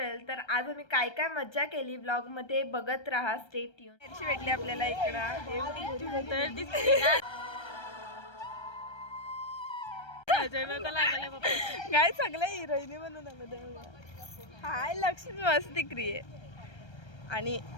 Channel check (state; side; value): late; right; 1.3 ms